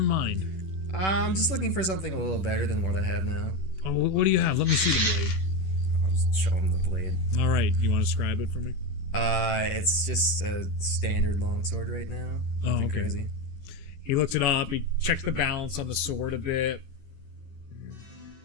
mind? I'm just looking for something a little better than what I have now. Oh, what do you have? Let me see the blade. I'll just show him the blade. All right, you want to describe it for me? It's just a standard longsword right now. Nothing okay. crazy. He looks it up. He checks the balance on the sword a bit.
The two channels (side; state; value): right; late; 11 ms